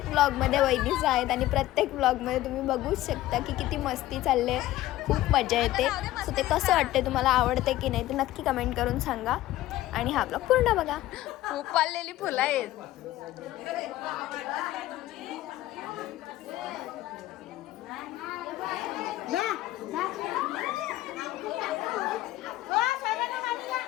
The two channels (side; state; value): right; quieter; 15.5 dB